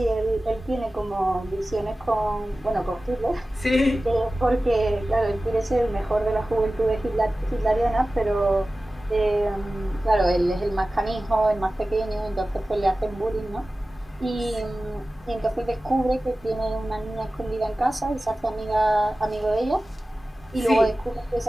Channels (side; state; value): both; normal; correlation 0.96